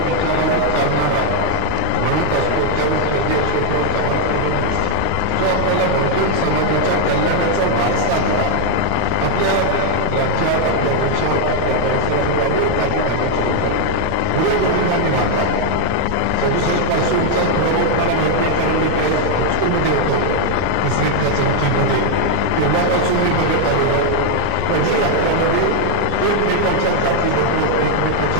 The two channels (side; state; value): both; different; correlation 0.00